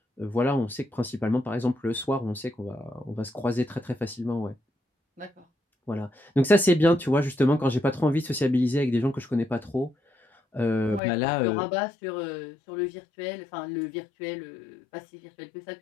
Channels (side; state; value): right; drops out; at 11.0 s